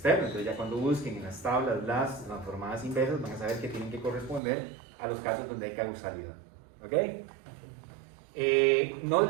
Entonces ya cuando busquen en las tablas las transformadas inversas van a saber que tienen que corresponder a los casos donde hay causalidad. ¿Ok? No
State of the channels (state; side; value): drops out; left; at 4.4 s